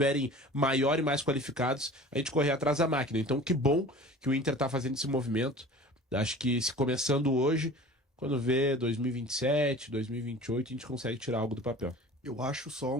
maior e mais qualificados, a gente correr atrás da máquina. Então que bom que o Inter tá fazendo esse movimento. Acho que se começando hoje, quando vê 2027, 2028, a gente consegue tirar algo do papel. Eu acho só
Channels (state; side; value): normal; both; correlation 0.41